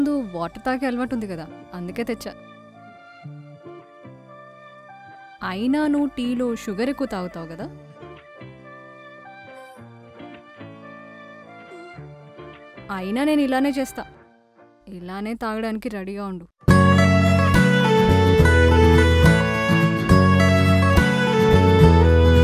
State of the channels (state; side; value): identical; both; correlation 1.00